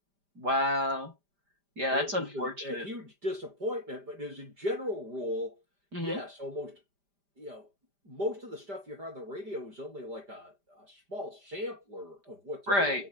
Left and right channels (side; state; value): left; late; 5.0 ms